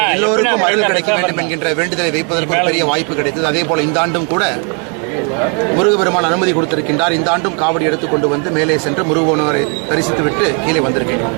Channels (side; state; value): left; quieter; 37.8 dB